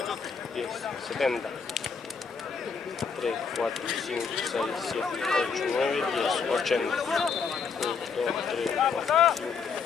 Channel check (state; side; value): quieter; right; 5.7 dB